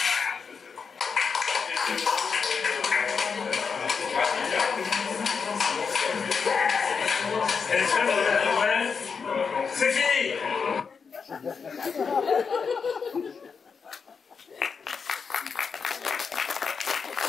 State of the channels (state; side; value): quieter; right; 5.7 dB